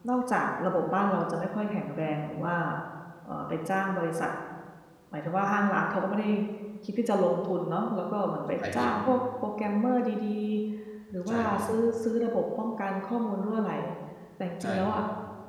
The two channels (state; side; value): identical; both; correlation 1.00